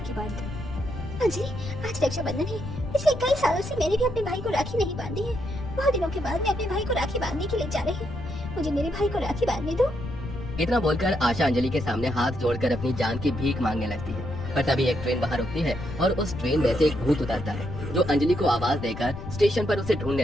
बांध दूं। अंजलि, आज रक्षाबंधन है। पिछले कई सालों से मैंने भी अपने भाई को राखी नहीं बांधी है। बहुत दिनों के बाद मैं अपने भाई को राखी बांधने के लिए जा रही हूँ। मुझे मेरे भाई को राखी बांधने दो। इतना बोलकर आशा अंजलि के सामने हाथ जोड़कर अपनी जान की भीख मांगने लगती है। पर तभी एक ट्रेन बाहर रुकती है और उस ट्रेन में से एक भूत उतरता है, जो अंजलि को आवाज देकर स्टेशन पर उसे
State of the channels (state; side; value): noise; left; rumble, 9 dB below the sound